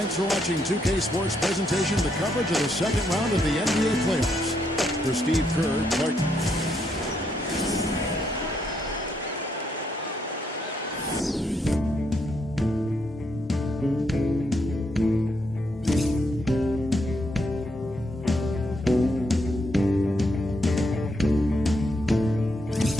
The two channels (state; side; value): normal; both; correlation 0.77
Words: for watching 2K Sports presentation, the coverage of the second round of the NBA playoffs. For Steve Kerr, Clark.